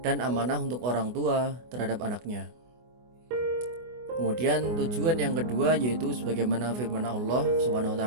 dan amanah untuk orang tua terhadap anaknya. Kemudian tujuan yang kedua yaitu sebagaimana firman Allah Subhanahu wa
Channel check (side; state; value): left; late; 24 ms